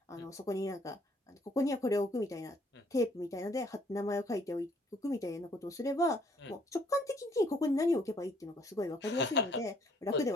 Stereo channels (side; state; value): both; normal; correlation 0.64